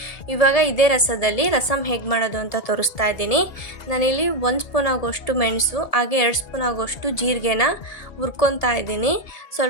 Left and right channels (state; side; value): late; right; 1.7 ms